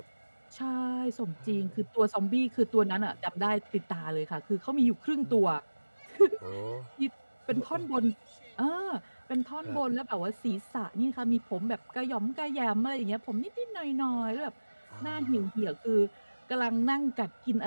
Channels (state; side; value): inverted; both; correlation -1.00